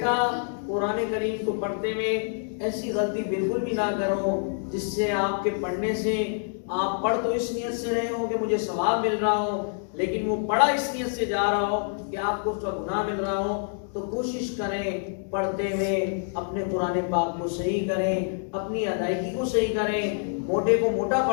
قرآن کریم کو پڑھتے ہوئے ایسی غلطی بالکل بھی نہ کرو جس سے آپ کے پڑھنے سے آپ پڑھ تو اس نیت سے رہے ہو کہ مجھے ثواب مل رہا ہو، لیکن وہ پڑھا اس نیت سے جا رہا ہو کہ آپ کو اس کا گناہ مل رہا ہو۔ تو کوشش کریں پڑھتے ہوئے اپنے قرآن پاک کو صحیح کریں، اپنی ادائیگی کو صحیح کریں، موٹے کو موٹا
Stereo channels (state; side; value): silent; right; digital silence